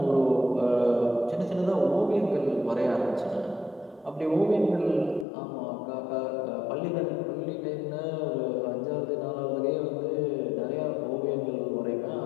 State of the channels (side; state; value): right; drops out; at 5.2 s